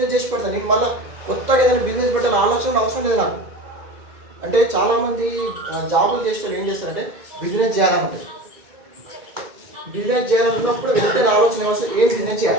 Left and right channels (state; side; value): late; left; 2.1 ms